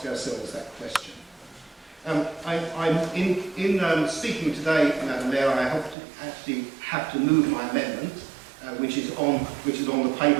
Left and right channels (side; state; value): left; drops out; at 6.0 s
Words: ourselves that question. I'm in speaking today, Madam Mayor, I actually have to move my amendment, which is on the paper.